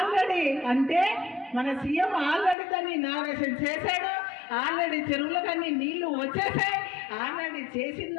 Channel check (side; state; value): right; drops out; at 2.6 s